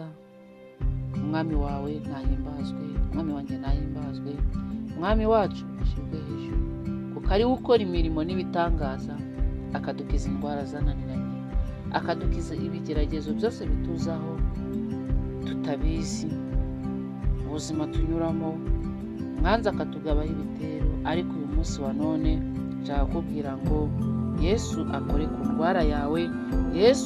Umwami wawe nahimbazwe, umwami wanjye nahimbazwe, umwami wacu ashimwe hejuru, kuko ari we ukora imirimo n'ibitangaza, akadukiza indwara zananiranye, akadukiza ibigeragezo byose bituzaho tutabizi, ubuzima tunyuramo, mwanza akatugabaho ibitero. Ariko uyu munsi wa none nshaka kubwira ngo Yesu akore ku ndwara yawe,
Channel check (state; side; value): identical; both; correlation 1.00